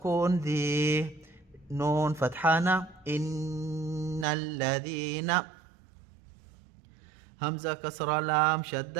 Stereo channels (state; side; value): drops out; left; at 4.2 s